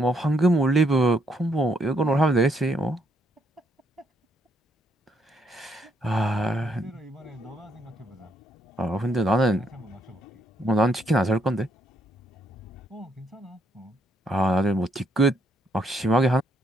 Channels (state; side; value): normal; both; correlation 0.73